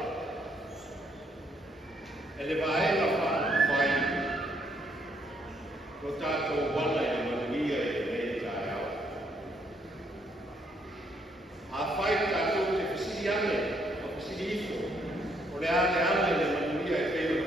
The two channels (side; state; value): both; normal; correlation 0.71